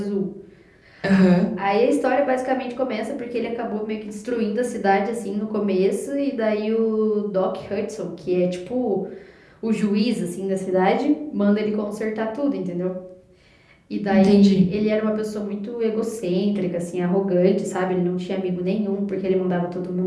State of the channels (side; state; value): both; identical; correlation 1.00